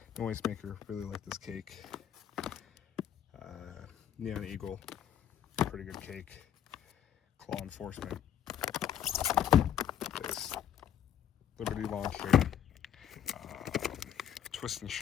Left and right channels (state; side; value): quieter; right; 9.9 dB